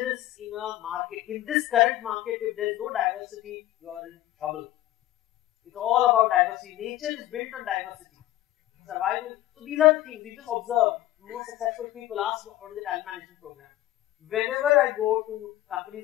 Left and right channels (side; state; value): right; quieter; 14.8 dB